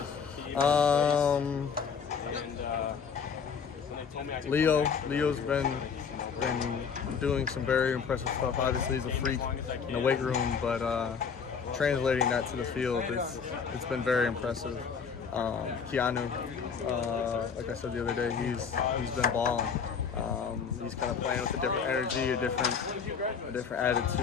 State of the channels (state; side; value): quieter; right; 6.3 dB